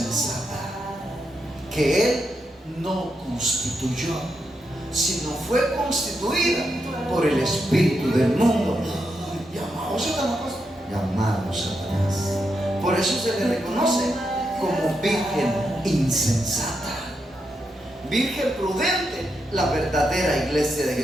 que Él no constituyó, sino fue constituida por el espíritu del mundo, llamado Satanás, llamado Satanás. Por eso se le reconoce como virgen insensata. Virgen prudente, la verdadera iglesia de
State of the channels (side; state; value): both; normal; correlation 0.84